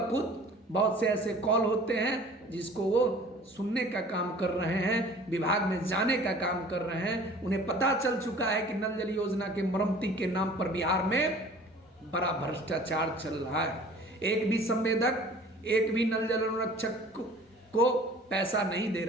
खुद बहुत से ऐसे कॉल होते हैं जिसको वो सुनने का काम कर रहे हैं, विभाग में जाने का काम कर रहे हैं। उन्हें पता चल चुका है कि नल जल योजना के मरम्मती के नाम पर बिहार में बड़ा भ्रष्टाचार चल रहा है। एक भी संवेदक, एक भी नल जल अनुरक्षक को पैसा नहीं दे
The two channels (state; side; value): normal; both; correlation 0.47